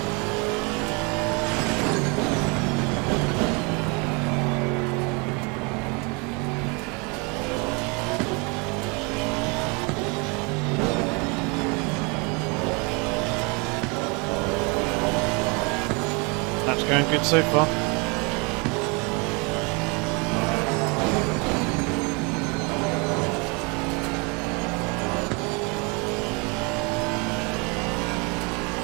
That's going good so far.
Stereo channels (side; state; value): left; quieter; 30.6 dB